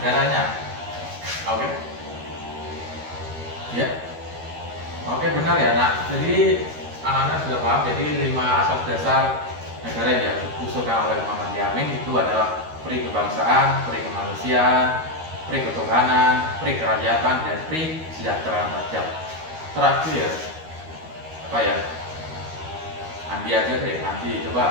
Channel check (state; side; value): late; left; 13 ms